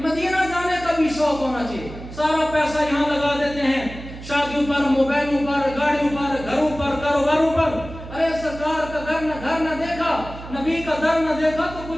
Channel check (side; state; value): right; noise; hum, 13 dB below the sound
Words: مدینہ جانے کا بھی شوق ہونا چاہیے. سارا پیسہ یہاں لگا دیتے ہیں, شادیوں پر, موبائلوں پر, گاڑیوں پر, گھروں پر, کاروباروں پر. ارے سرکار کا گھر نہ دیکھا, نبی کا در نہ دیکھا تو